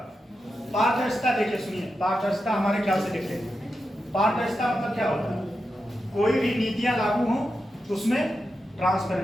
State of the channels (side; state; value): both; normal; correlation 0.88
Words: पारदर्शिता देखिए, सुनिए, पारदर्शिता हमारे ख्याल से देख लेंगे। पारदर्शिता मतलब क्या होता है? कोई भी नीतियां लागू हो उसमें